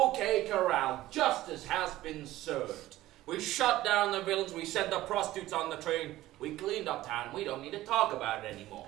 Corral, justice has been served. We shut down the villains, we sent the prostitutes on the train, we cleaned up town, and we don't need to talk about it anymore.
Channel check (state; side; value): quieter; left; 15.8 dB